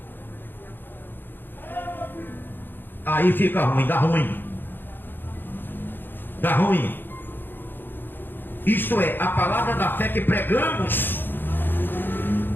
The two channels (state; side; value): late; right; 0.096 ms